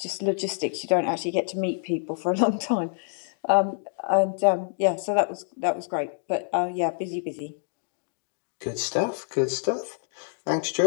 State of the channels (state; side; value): silent; right; digital silence